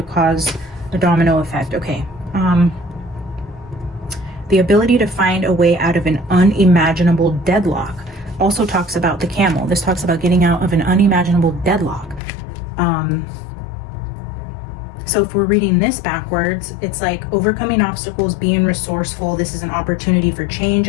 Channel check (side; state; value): right; drops out; at 12.2 s